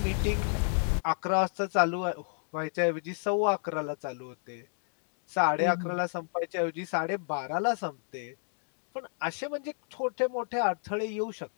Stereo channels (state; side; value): silent; right; digital silence